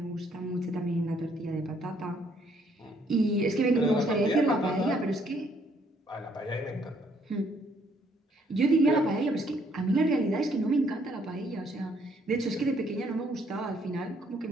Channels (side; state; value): both; normal; correlation 0.67